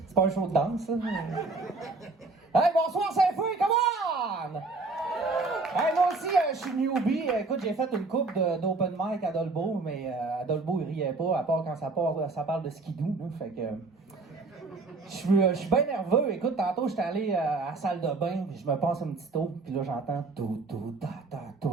C'est pas un show de danse, ça? Hey, bonsoir Saint-Fouille, come on! Hey, moi aussi, je suis newbie. Écoute, j'ai fait une coupe d'open mic à Dolbeau, mais à Dolbeau, il riait pas, à part quand ça parle de skidoo, là, fait que... Je suis bien nerveux. Écoute, tantôt, j'étais allé à la salle de bain, puis je me passe une petite eau, puis là, j'entends tout, ta, ta,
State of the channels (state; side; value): quieter; left; 3.7 dB